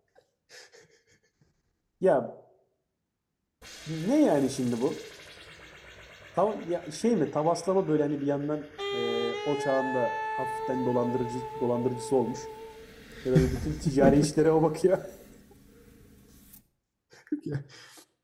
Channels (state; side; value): identical; both; correlation 1.00